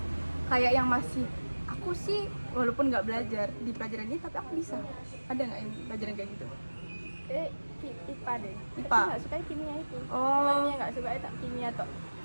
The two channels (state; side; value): inverted; both; correlation -1.00